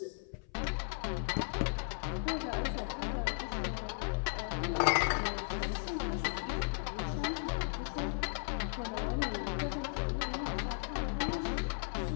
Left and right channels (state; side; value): silent; right; 54 dB below the other